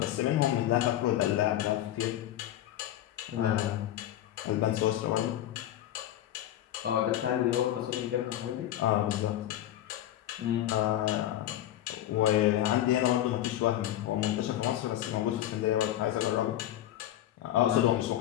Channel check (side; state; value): right; quieter; 12.7 dB